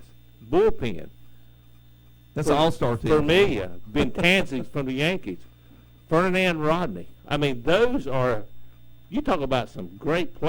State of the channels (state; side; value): identical; both; correlation 1.00